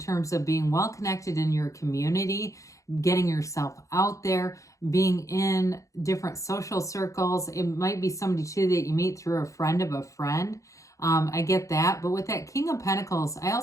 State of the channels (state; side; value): late; right; 0.15 ms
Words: of being well connected in your community, getting yourself out there, being in different social circles. It might be somebody too that you meet through a friend of a friend. I get that. But with that King of Pentacles, I